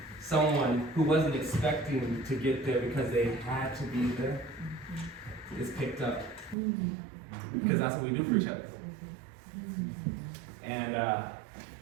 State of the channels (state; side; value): drops out; left; at 6.6 s